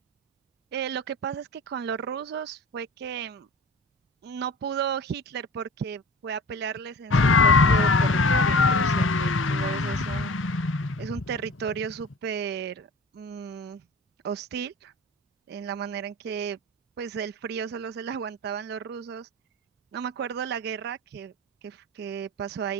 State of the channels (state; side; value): normal; both; correlation 0.38